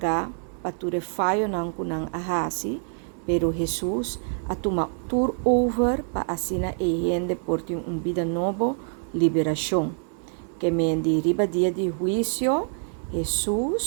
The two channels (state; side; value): silent; left; 61 dB below the other